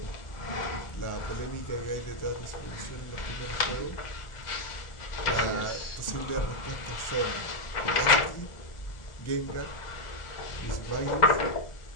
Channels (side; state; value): right; late; 1.4 ms